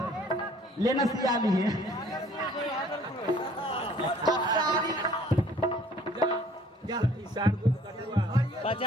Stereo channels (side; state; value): both; normal; correlation 0.56